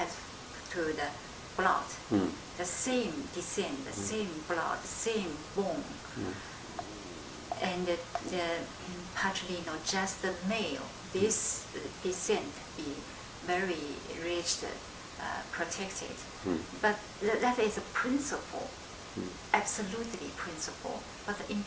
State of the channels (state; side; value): identical; both; correlation 1.00